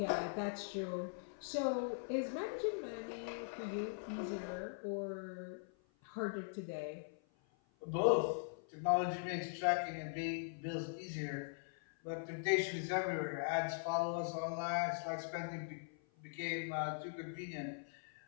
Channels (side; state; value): right; silent; 50 dB below the other